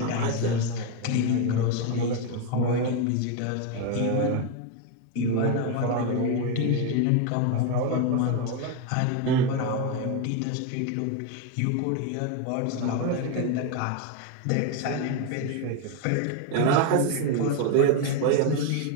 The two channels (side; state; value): both; different; correlation 0.02